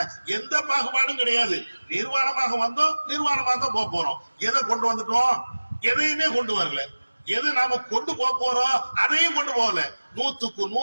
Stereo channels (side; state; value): both; inverted; correlation -1.00